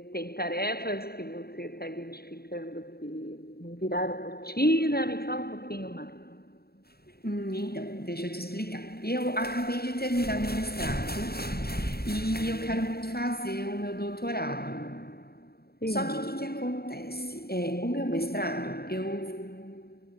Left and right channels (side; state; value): right; late; 0.46 ms